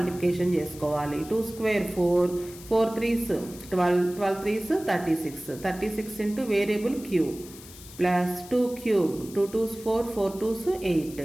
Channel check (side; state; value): left; noise; hiss, 18 dB below the sound